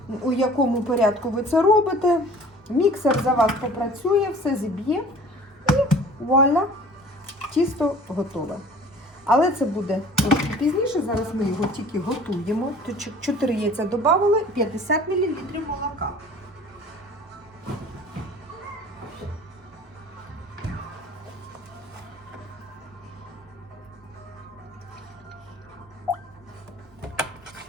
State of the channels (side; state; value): both; normal; correlation 0.47